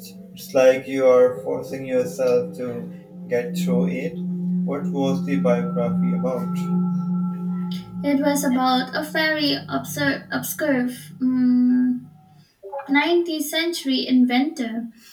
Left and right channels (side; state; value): both; identical; correlation 1.00